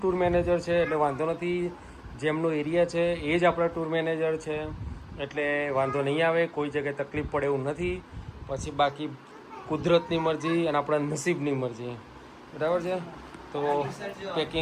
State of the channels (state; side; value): identical; both; correlation 1.00